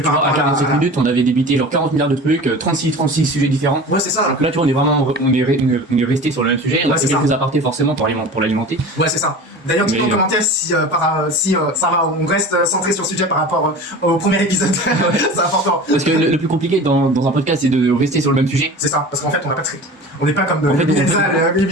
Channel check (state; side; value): normal; both; correlation 0.36